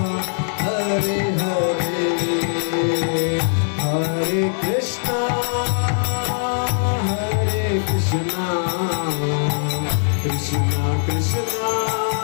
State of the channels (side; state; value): right; silent; 63 dB below the other